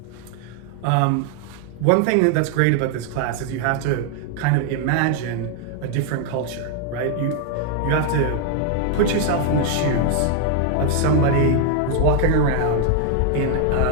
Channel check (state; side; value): different; both; correlation 0.00